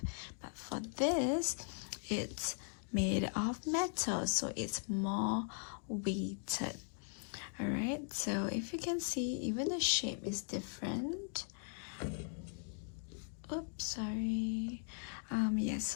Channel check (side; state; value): right; silent; 52 dB below the other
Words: But for this, it's made of metal, so it's more weighted. Alright, so if you can see, even the shape is different. Oops, sorry. Yeah,